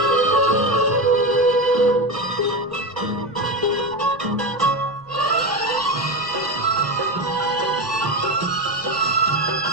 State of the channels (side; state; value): left; noise; rumble, 29 dB below the sound